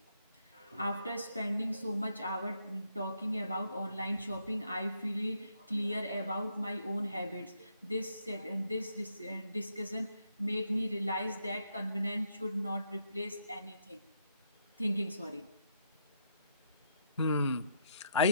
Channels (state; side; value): inverted; both; correlation -0.75